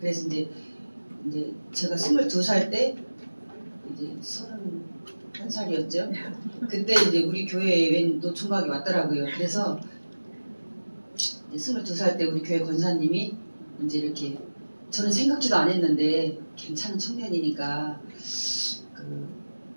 그래서 이제 제가 22살 때 이제 31살이었죠. 그때 이제 우리 교회에 웬 노총각이 왔더라고요. 그래서 22살 때 우리 교회 권사님이 이제 이렇게 저는 생각지도 안 했는데 괜찮은 청년이니까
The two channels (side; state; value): both; inverted; correlation -1.00